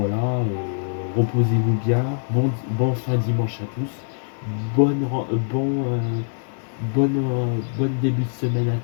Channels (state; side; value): silent; right; 59 dB below the other